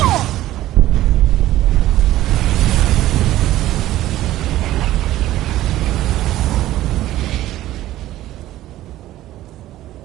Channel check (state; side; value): quieter; left; 14.7 dB